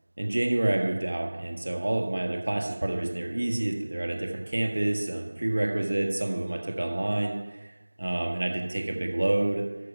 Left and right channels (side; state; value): both; inverted; correlation -1.00